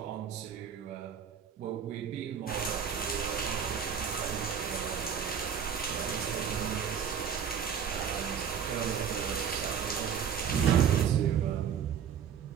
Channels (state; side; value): quieter; left; 7.8 dB